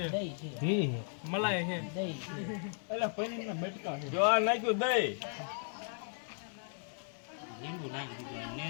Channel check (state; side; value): silent; right; 54 dB below the other